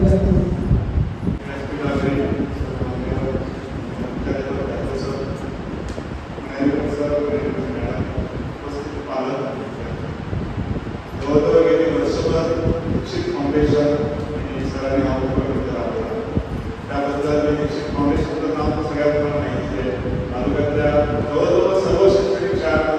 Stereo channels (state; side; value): identical; both; correlation 1.00